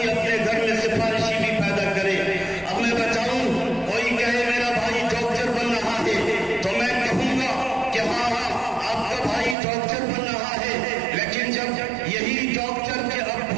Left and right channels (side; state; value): left; drops out; at 9.6 s